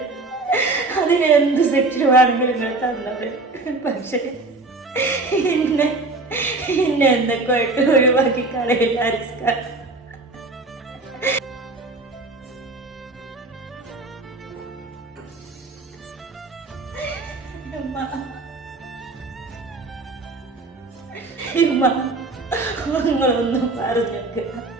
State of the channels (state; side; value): quieter; left; 3.2 dB